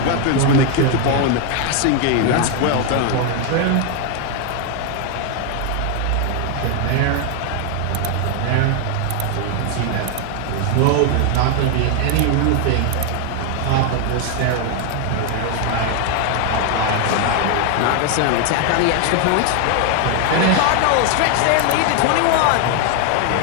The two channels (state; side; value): different; both; correlation 0.01